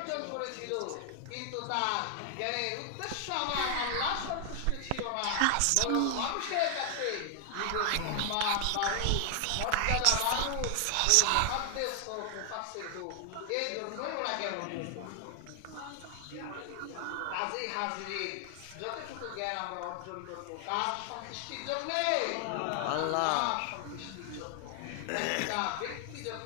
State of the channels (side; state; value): both; different; correlation 0.00